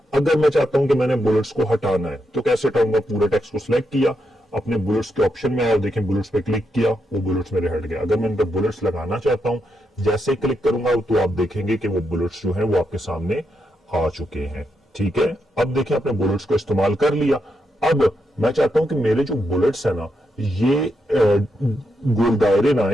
अगर मैं चाहता हूं कि मैंने बुलेट्स को हटाना है तो कैसे हटाऊंगा? पूरे टेक्स्ट को सिलेक्ट किया, अपने बुलेट्स के ऑप्शन में आया, देखें बुलेट्स पे क्लिक किया, वो बुलेट्स मेरे हट गए। अगर मैं इन पर बुलेट्स लगाना चाहता हूं, जैसे ही क्लिक करूंगा तो आप देखेंगे कि वो बुलेट्स जो है वो आपके सामने आ चुके हैं। ठीक है, अब देखिए आपने बुलेट्स को इस्तेमाल कर लिया। अब मैं चाहता हूं कि मेरे जो बुलेट्स है ना ये गोल दायरे ना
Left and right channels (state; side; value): normal; both; correlation 0.82